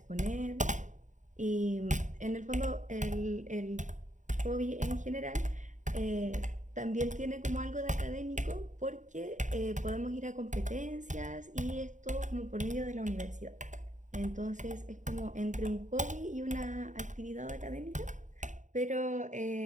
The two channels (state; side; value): late; left; 0.36 ms